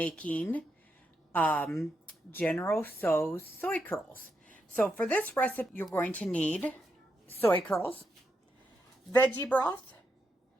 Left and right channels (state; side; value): normal; both; correlation 0.83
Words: um, General Tso's soy curls. So for this recipe, you're going to need soy curls, veggie broth,